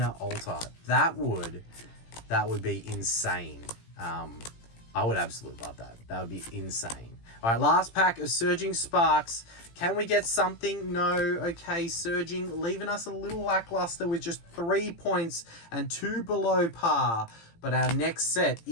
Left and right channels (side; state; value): right; late; 18 ms